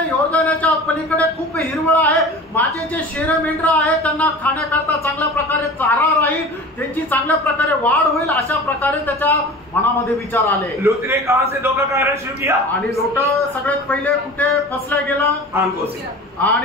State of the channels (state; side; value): normal; both; correlation 0.37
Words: योर्दानाच्या पलीकडे खूप हिरवळ आहे, माझे जे शेर मेंढर आहे त्यांना खाण्याकरता चांगल्या प्रकारे चारा राहील, त्यांची चांगल्या प्रकारे वाढ होईल, अशा प्रकारे त्याच्या मनामध्ये विचार आले। लोत ने कहां से धोखा खाना शुरू किया, आणि लोट सगळ्यात पहिले कुठे फसला गेला, आंखों से,